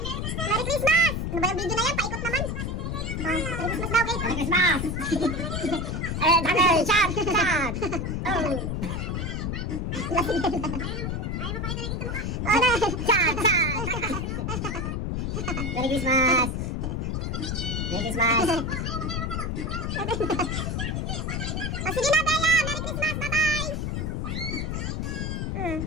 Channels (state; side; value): noise; left; rumble, 1 dB below the sound